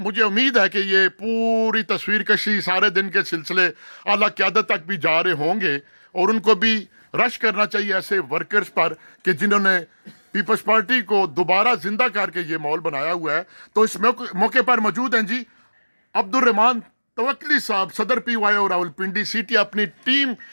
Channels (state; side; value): inverted; both; correlation -1.00